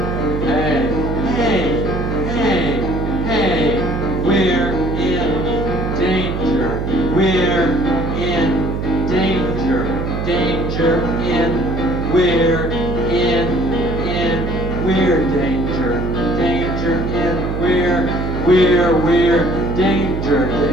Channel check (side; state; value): right; noise; hum, 3 dB below the sound